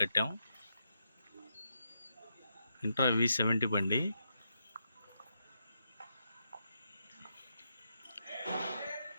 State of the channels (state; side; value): inverted; both; correlation -0.82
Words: ఇంట్రా V70 బండి.